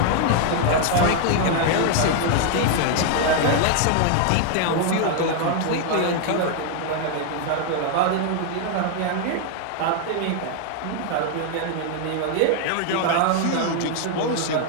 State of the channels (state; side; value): different; both; correlation 0.00